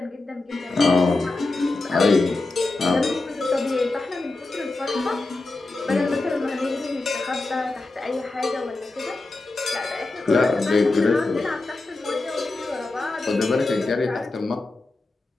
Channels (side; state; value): right; quieter; 3.2 dB